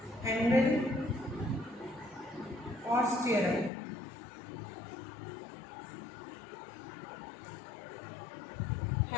हैंडल और स्टीयरम।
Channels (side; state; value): right; drops out; at 3.7 s